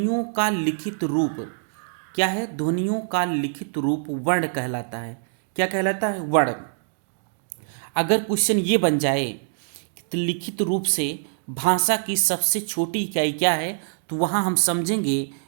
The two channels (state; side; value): silent; left; digital silence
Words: का लिखित रूप। क्या है? ध्वनियों का लिखित रूप वर्ण कहलाता है। क्या कहलाता है? वर्ण। अगर क्वेश्चन ये बन जाए तो लिखित रूप से भाषा की सबसे छोटी इकाई क्या है, तो वहाँ हम समझेंगे